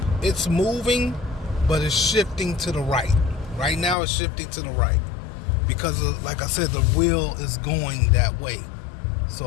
It's moving, but it's shifting to the right. Right now, it's shifting to the right because, like I said, the wheel is going that way.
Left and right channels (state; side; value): drops out; right; at 4.0 s